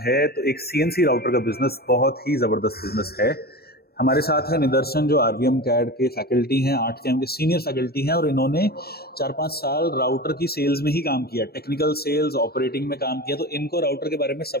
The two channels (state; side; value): late; right; 0.46 ms